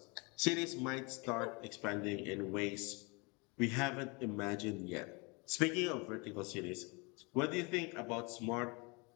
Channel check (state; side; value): quieter; right; 29.3 dB